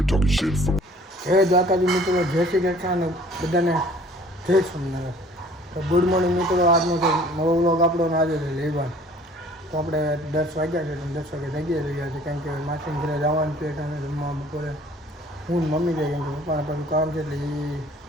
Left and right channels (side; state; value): both; normal; correlation 0.53